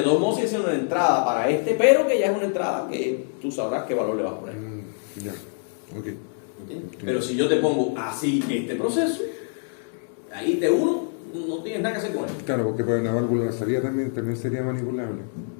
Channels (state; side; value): silent; right; 62 dB below the other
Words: todos modos es una entrada para este, pero que ya es una entrada que tú sabrás qué valor le vas a poner. Ya, ok. ¿Entiendes? Pero si yo te pongo así este proceso, ahí T1 no tienes nada que hacer con él. Claro, porque para una válvula de salida también sería manipulable.